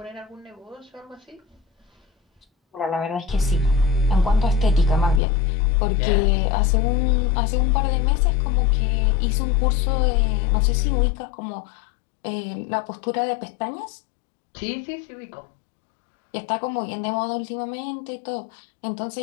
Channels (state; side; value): drops out; right; at 5.2 s